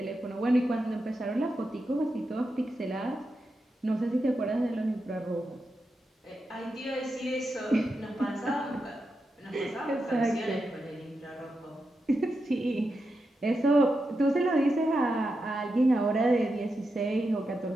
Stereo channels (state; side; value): normal; both; correlation 0.87